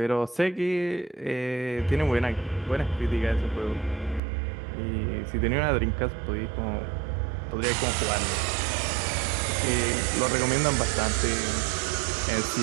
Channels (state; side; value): drops out; left; at 4.2 s